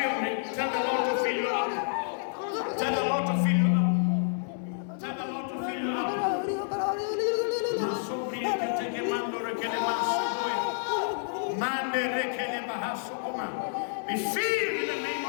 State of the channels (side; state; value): right; silent; digital silence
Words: me. Tell the Lord to fill you up. Tell the Lord to fill you up. Tell the Lord to fill you up. Be filled in the name